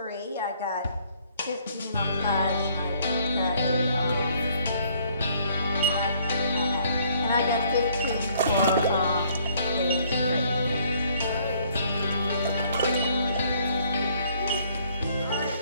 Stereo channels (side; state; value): both; inverted; correlation -0.63